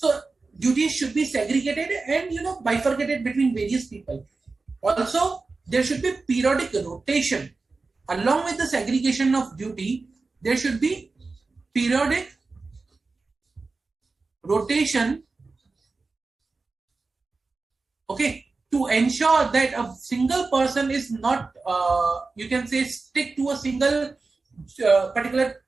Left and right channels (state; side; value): quieter; left; 3.9 dB